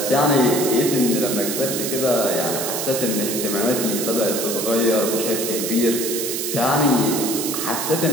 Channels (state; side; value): noise; right; hiss, 3 dB below the sound